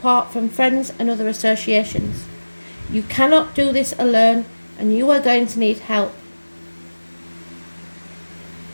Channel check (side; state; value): both; inverted; correlation -1.00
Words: from friends and other associations. You cannot do this alone and you are going to need help.